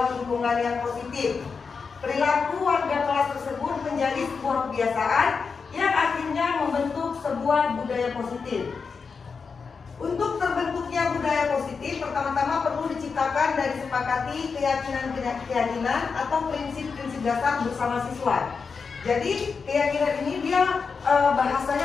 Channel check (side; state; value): right; quieter; 5.3 dB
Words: lingkungan yang positif. Perilaku warga kelas tersebut menjadi sebuah kebiasaan yang akhirnya membentuk sebuah budaya positif. Untuk terbentuknya budaya positif, pertama-tama perlu diciptakan dan disepakati keyakinan-keyakinan atau prinsip-prinsip dasar bersama siswa. Jadi keyakinan ini dia